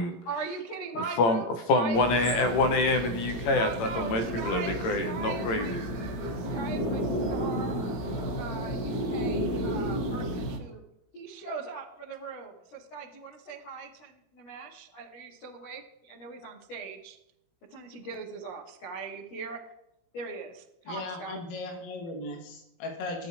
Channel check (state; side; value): late; right; 18 ms